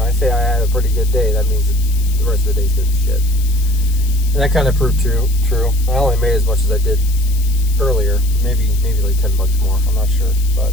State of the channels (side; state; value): left; noise; hiss, 15 dB below the sound